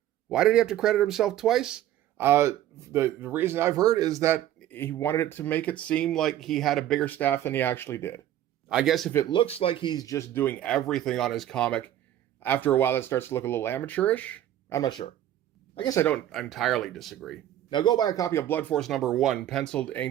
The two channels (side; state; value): left; quieter; 12.2 dB